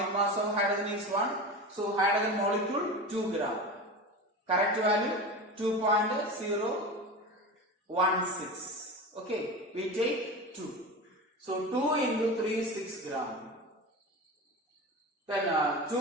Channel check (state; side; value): normal; both; correlation 0.27